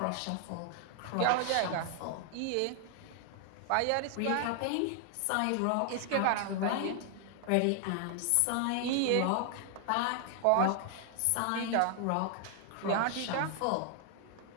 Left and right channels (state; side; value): different; both; correlation 0.00